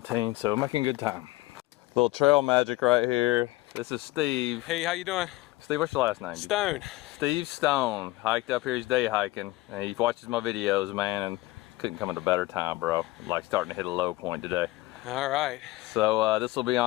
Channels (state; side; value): quieter; right; 19.2 dB